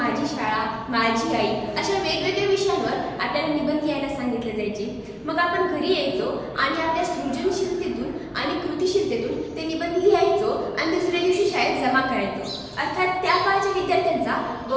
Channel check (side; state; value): both; identical; correlation 1.00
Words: शाळा, माझी आई अशा वेगवेगळ्या विषयांवर आपल्याला निबंध लिहायला सांगितले जायचे. मग आपण घरी यायचो आणि आपल्या सृजनशीलतेतून आणि कृतिशीलतेतून ते निबंध लिहायचो आणि दुसऱ्या दिवशी शाळेत जमा करायचो. अर्थात त्या काळच्या विद्यार्थ्यांचा